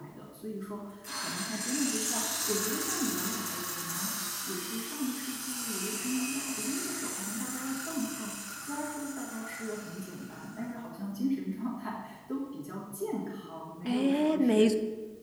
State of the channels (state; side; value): identical; both; correlation 1.00